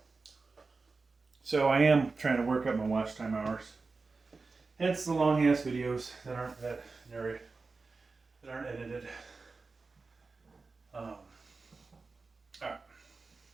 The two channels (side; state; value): left; quieter; 4.0 dB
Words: So I am trying to work up my watch time hours. Hence the long ass videos that aren't edited. Alright.